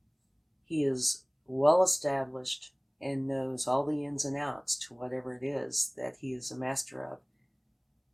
He is well established and knows all the ins and outs to whatever it is that he is a master of.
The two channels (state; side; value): identical; both; correlation 1.00